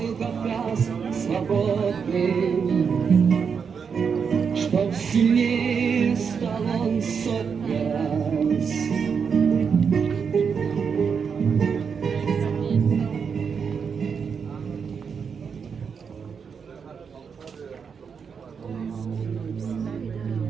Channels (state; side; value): quieter; left; 6.3 dB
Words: Кавказ свободным, чтоб сильнее